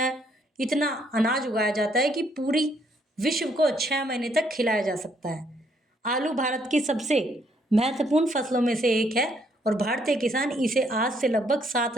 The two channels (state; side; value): normal; both; correlation 0.70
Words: इतना अनाज उगाया जाता है कि पूरी विश्व को 6 महीने तक खिलाया जा सकता है। आलू भारत की सबसे महत्वपूर्ण फसलों में से एक है और भारतीय किसान इसे आज से लगभग